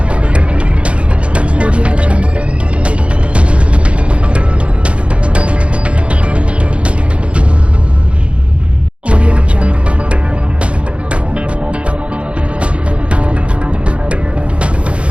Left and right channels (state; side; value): late; left; 0.060 ms